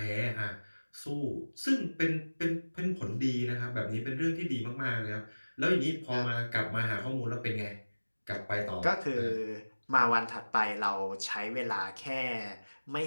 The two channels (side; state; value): both; inverted; correlation -1.00